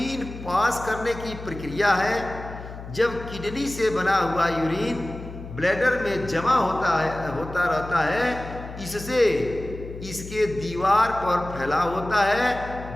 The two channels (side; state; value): left; noise; hum, 12 dB below the sound